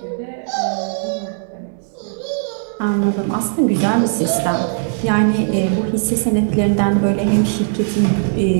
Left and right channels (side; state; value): left; silent; 63 dB below the other